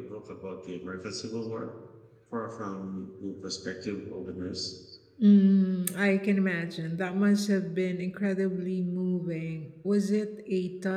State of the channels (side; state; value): both; identical; correlation 1.00